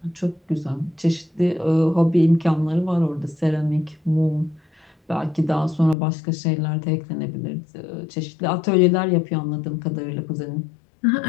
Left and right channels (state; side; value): drops out; right; at 6.0 s